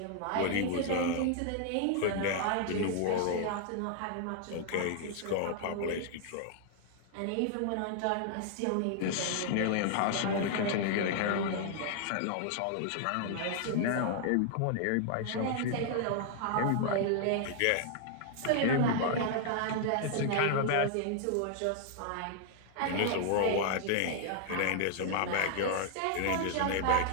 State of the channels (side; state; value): both; different; correlation 0.00